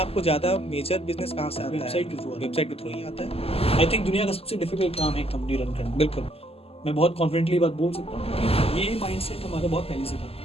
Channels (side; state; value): right; late; 0.29 ms